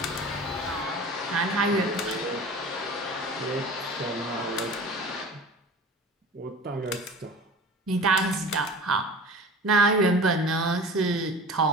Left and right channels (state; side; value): normal; both; correlation 0.39